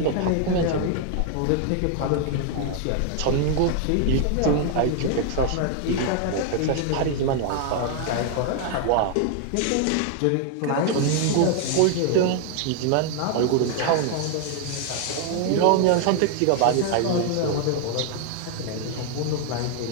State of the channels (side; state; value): both; different; correlation 0.00